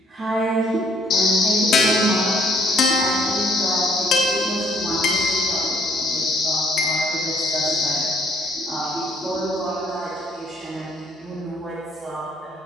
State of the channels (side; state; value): both; normal; correlation 0.63